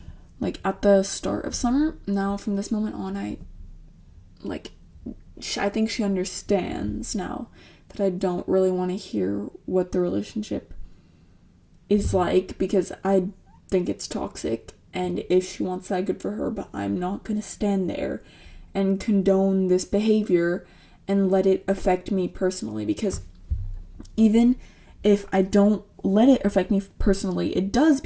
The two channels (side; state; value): both; identical; correlation 1.00